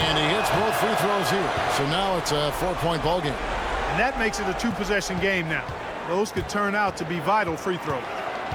he hits both free throws here. So now it's a 4-point ball game. And that makes it a 2-possession game now. Those could turn out to be vital free throws.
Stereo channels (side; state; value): both; identical; correlation 1.00